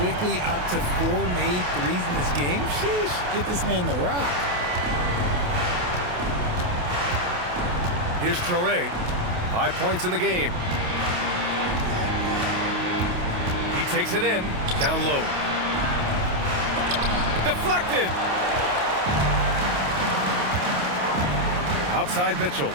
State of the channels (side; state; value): left; late; 28 ms